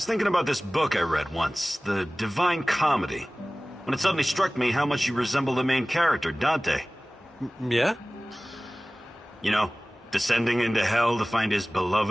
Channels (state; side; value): normal; both; correlation 0.98